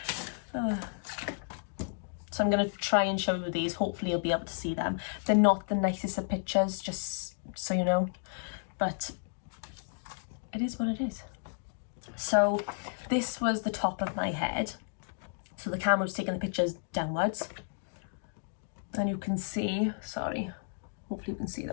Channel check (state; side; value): silent; right; digital silence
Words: So I'm going to try and show you these. Hopefully you'll be able to see them. They're not the nicest of pictures, just so you know. But it is what it is. So this was the top of my head. So the camera was taking the pictures downwards. And you can see, sorry, hopefully you can see